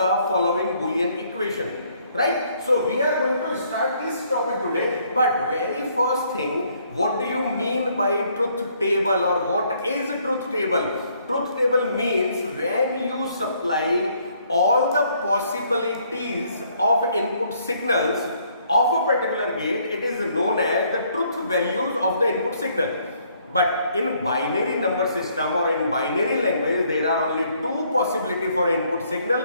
following Boolean equation. Right, so we are going to start this topic today, but very first thing, what do you mean by truth table, or what is truth table? Truth table means when you supply all the possibilities of input signals of a particular gate, it is known as the truth values of the input signal. But in binary number system or in binary language, there are only two possibilities for input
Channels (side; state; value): both; inverted; correlation -0.67